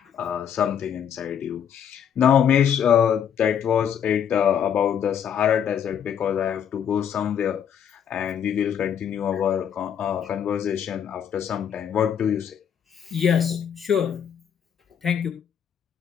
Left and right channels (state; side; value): quieter; right; 8.5 dB